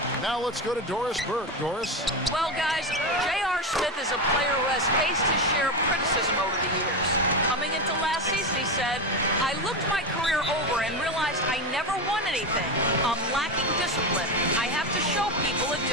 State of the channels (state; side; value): normal; both; correlation 0.16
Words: Now let's go to Doris Burke. Doris? Well, guys, J.R. Smith is a player who has faced his share of criticism over the years. Coming into last season, he said, I looked my career over and realized I never won anything. I'm lacking discipline. I have to show people a